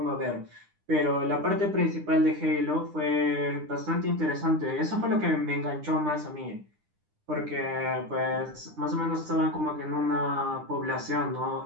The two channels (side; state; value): left; late; 9.9 ms